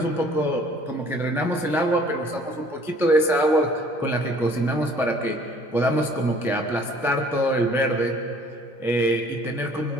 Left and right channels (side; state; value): both; normal; correlation 0.55